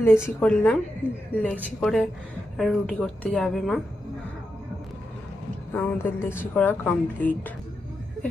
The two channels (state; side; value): normal; both; correlation 0.86